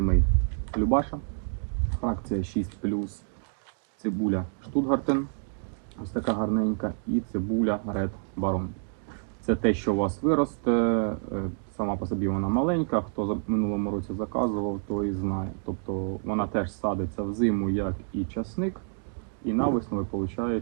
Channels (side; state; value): left; silent; 59 dB below the other